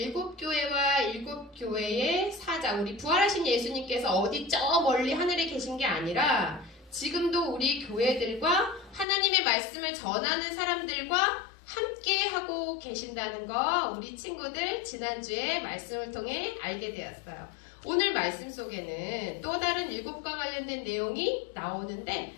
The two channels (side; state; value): right; drops out; at 9.1 s